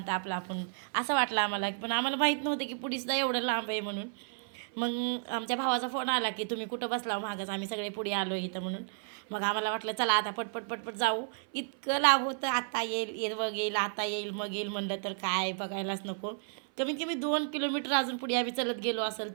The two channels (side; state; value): left; silent; 56 dB below the other